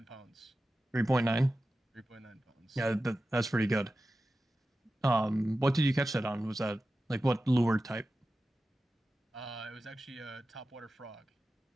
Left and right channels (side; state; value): both; normal; correlation 0.93